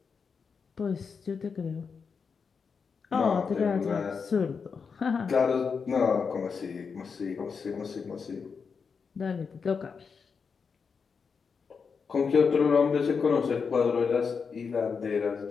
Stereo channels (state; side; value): quieter; right; 5.6 dB